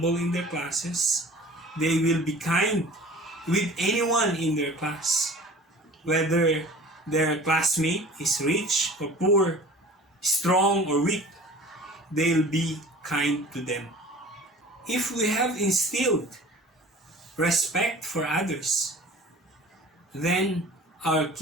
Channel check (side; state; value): both; normal; correlation 0.43